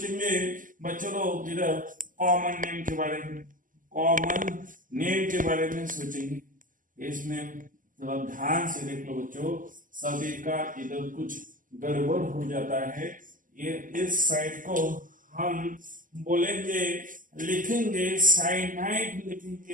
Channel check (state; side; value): late; left; 0.38 ms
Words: बच्चों लोग इधर कॉमन नेम के बारे में, कॉमन नेम के बारे में सोचेंगे। इसमें थोड़ा ध्यान से देख लो बच्चों, सभी का इधर कुछ गड़बड़ हो जाता है। ये इस साइड को हम बोलेंगे, लिखेंगे साइनाइड